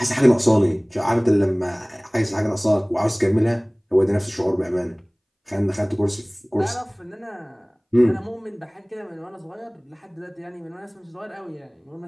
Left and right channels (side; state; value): both; identical; correlation 1.00